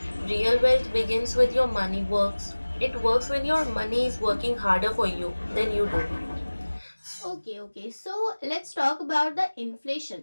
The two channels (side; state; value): both; inverted; correlation -1.00